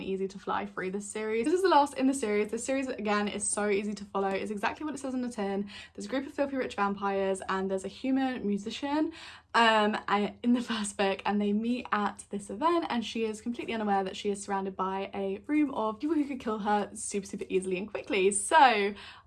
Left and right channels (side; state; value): both; identical; correlation 1.00